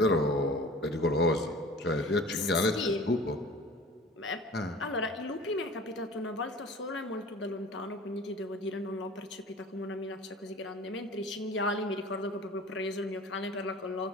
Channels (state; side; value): normal; both; correlation 0.42